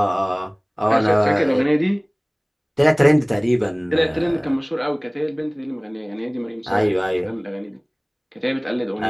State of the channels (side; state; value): both; identical; correlation 1.00